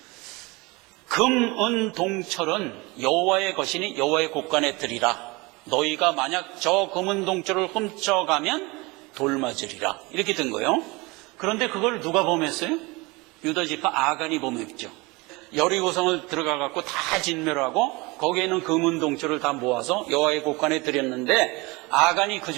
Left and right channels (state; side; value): quieter; left; 24.9 dB